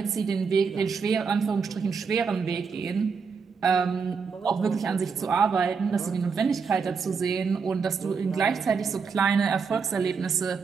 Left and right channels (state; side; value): quieter; left; 5.5 dB